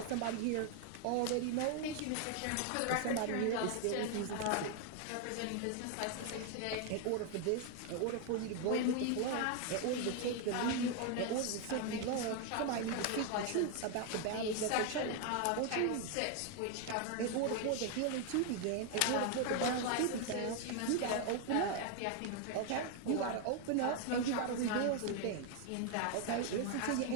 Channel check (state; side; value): different; both; correlation 0.01